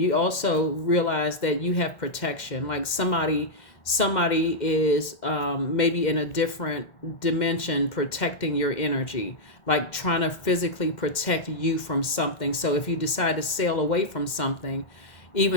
also realize that you have protection. Like somebody is maybe in a different dimension protecting your energy, like trying to physically protect you from something. So if you decide to sail away from something,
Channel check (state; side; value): late; right; 2.1 ms